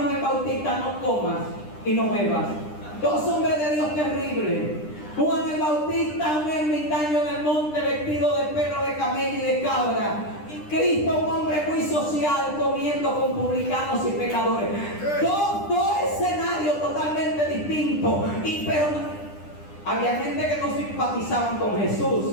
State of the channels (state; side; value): late; right; 9.9 ms